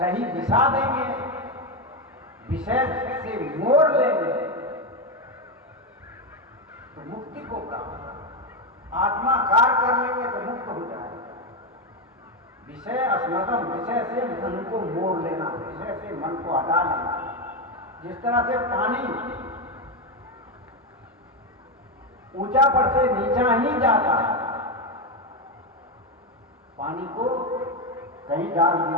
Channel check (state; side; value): normal; both; correlation 0.09